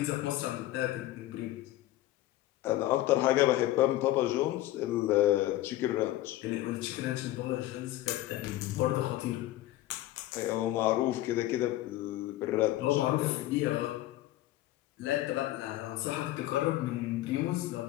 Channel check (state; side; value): quieter; right; 15.6 dB